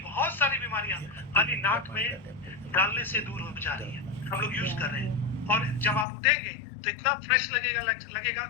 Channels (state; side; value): drops out; right; at 6.1 s